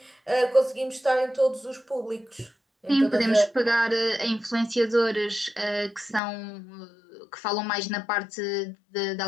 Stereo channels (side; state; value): right; drops out; at 6.2 s